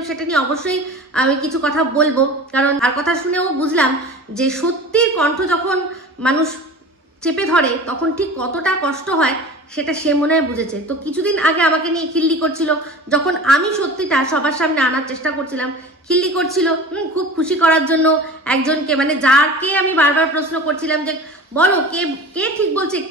সেটা নিয়ে অবশ্যই আমি কিছু কথা বলবো, কারণ তার কথা শুনেও বুঝলাম যে সত্যির কণ্ঠ যখন মানুষ চেপে ধরে তখন ঠিক কতটা কষ্ট হয়, সেটা সে মনে হয় বুঝেছে। তো কিছুদিন আগে আমাকে নিয়ে খিল্লি করছিল, যখন আমি সত্যিটা সবার সামনে আনার চেষ্টা করছিলাম, খিল্লি করছিল খুব খুশি করার জন্য একজনকে, মানে যাকে আমি বারবার প্রশ্ন করছিলাম যে বলো কে কে ঠিক বলছে,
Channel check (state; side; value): normal; both; correlation 0.37